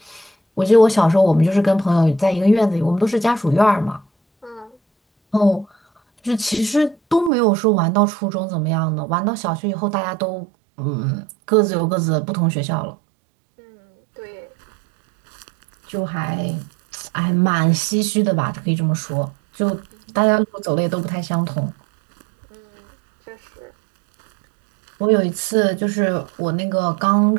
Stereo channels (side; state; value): left; drops out; at 7.3 s